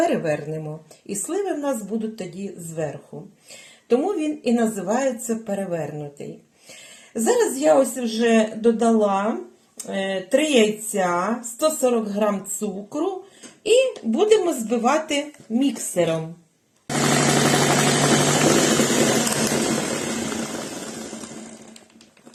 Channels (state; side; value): identical; both; correlation 1.00